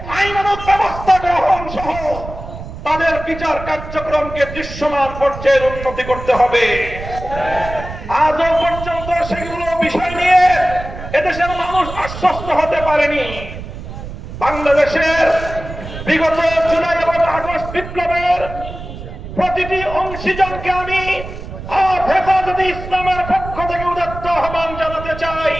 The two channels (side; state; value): right; noise; rumble, 10 dB below the sound